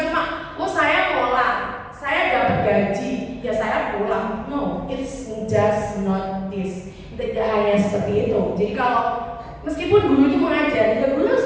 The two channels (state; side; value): identical; both; correlation 1.00